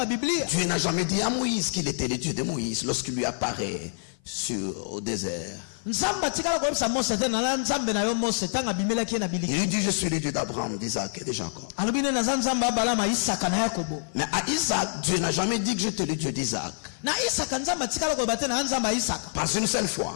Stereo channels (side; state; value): right; silent; 55 dB below the other